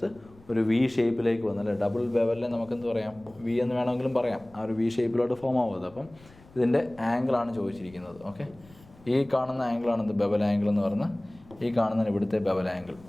ഒരു വി ഷേപ്പിലേക്ക് വന്നല്ലേ. ഡബിൾ ബെവലിനെ നമുക്കെന്ത് പറയാം, വി എന്ന് വേണമെങ്കിലും പറയാം. ആ ഒരു വി ഷേപ്പിലോട്ട് ഫോം ആവുന്നത്. അപ്പം ഇതിൻ്റെ ആംഗിളാണ് ചോദിച്ചിരിക്കുന്നത്. ഓക്കെ, ഈ കാണുന്ന ആംഗിളാണ് ഇത് ബെവൽ ആംഗിൾ എന്ന് പറഞ്ഞാൽ, ഈ കാണുന്നതിന് ഇവിടുത്തെ ബെവൽ ആംഗിൾ.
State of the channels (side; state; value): left; noise; rumble, 25 dB below the sound